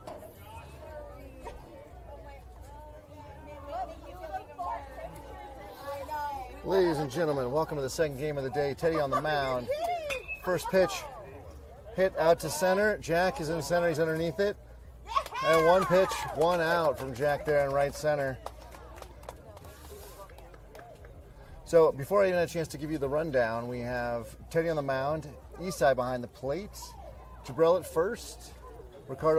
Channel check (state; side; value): identical; both; correlation 1.00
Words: Ladies and gentlemen, welcome to the second game of the day. Teddy on the mound. First pitch hit out to center. Jack is in center. He's underneath it. And one pitch, one out from Jack there in right center. So before I even had a chance to give you the rundown, we have Teddy on the mound, Isai behind the plate, Jabril at first,